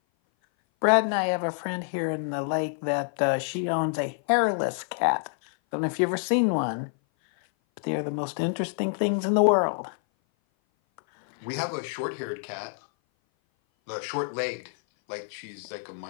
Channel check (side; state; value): right; silent; 57 dB below the other